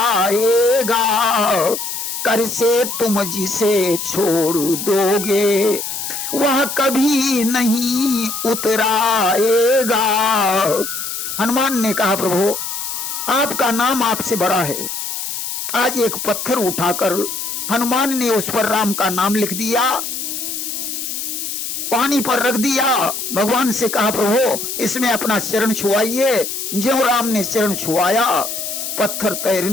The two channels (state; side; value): noise; left; hiss, 5 dB below the sound